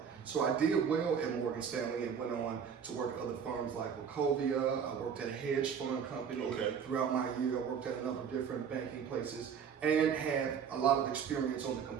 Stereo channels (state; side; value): quieter; left; 7.2 dB